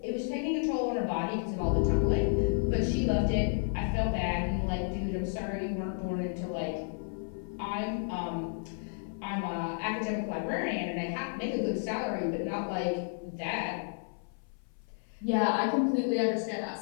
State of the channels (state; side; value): silent; right; 57 dB below the other